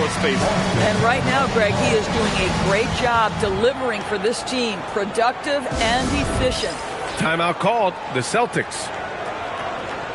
space. And right now, Greg, he is doing a great job delivering for this team. Productive and efficient. Timeout called. The Celtics.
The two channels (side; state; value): both; identical; correlation 1.00